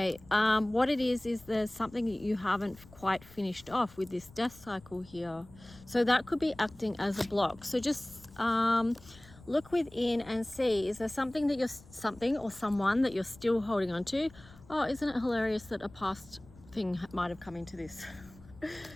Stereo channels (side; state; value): left; noise; rumble, 22 dB below the sound